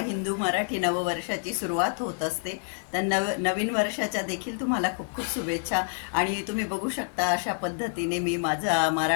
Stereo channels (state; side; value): silent; right; digital silence